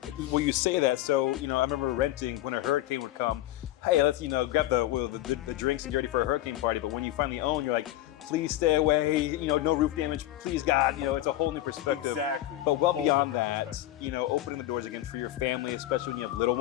well, you say that, so, I remember renting when a hurricane would come. Hey, let's, grab the drinks and get ready for a hurricane party. But when you finally own, you're like, please stay away, no roof damage, please God, it's a whole new perspective. Exactly. But well beyond that, opening the doors again for your family, especially when you have little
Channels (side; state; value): right; quieter; 14.5 dB